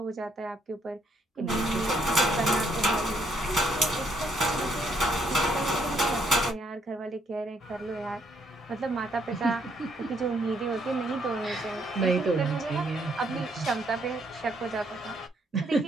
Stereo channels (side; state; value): both; normal; correlation 0.71